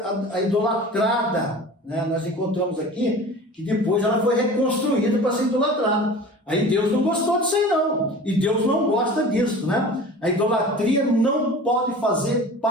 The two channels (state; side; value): normal; both; correlation 0.39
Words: a idolatrada, né? Nós encontramos aqui que depois ela foi reconstruída para ser idolatrada. Aí Deus não gostou disso aí não, e Deus não gosta disso, né? A idolatria não pode fazer